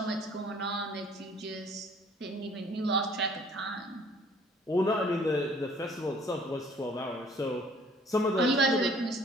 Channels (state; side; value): normal; both; correlation 0.56